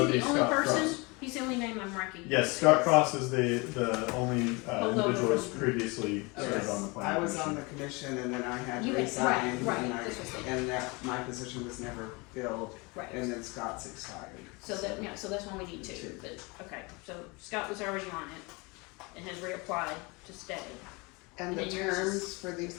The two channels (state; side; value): quieter; right; 27.2 dB